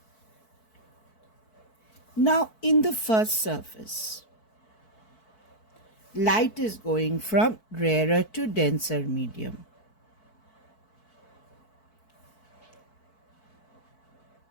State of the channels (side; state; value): right; late; 4.6 ms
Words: Now in the first surface, light is going from rarer to denser medium.